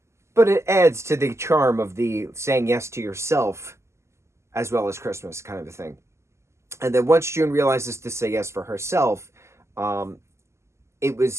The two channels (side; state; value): left; late; 0.13 ms